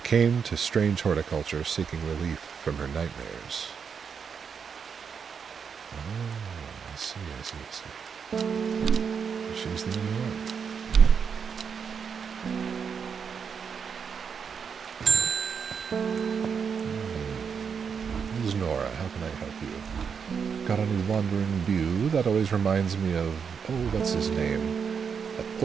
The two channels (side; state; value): left; quieter; 6.5 dB